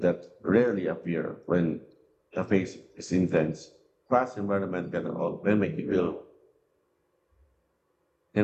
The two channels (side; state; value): both; identical; correlation 1.00